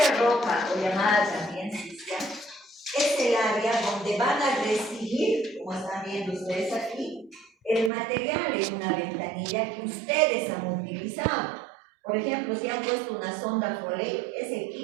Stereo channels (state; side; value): drops out; left; at 7.9 s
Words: roja, o llamada también sucia, es el área donde van a recibir, como están viendo ustedes aquí, el material en una ventanilla que ustedes han utilizado. Por ejemplo, si han puesto una sonda Foley, ese